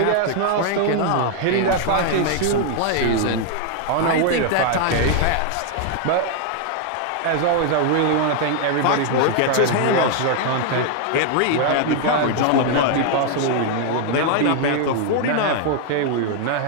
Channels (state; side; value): different; both; correlation 0.00